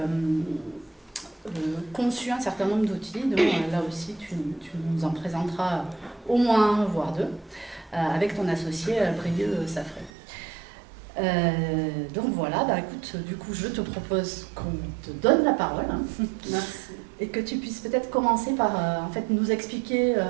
conçu un certain nombre d'outils, donc là aussi, tu nous en présenteras au moins un, voire deux, avec ton associé Brieux Safré. Donc voilà, écoute, du coup, je te propose qu'on te donne la parole. Merci. Et que tu puisses peut-être commencer par en fait, nous expliquer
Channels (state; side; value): drops out; left; at 10.1 s